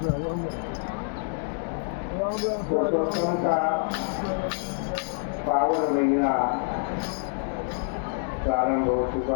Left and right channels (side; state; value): right; silent; 60 dB below the other